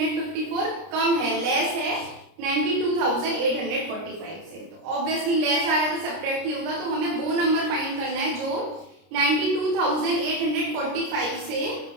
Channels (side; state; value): left; late; 30 ms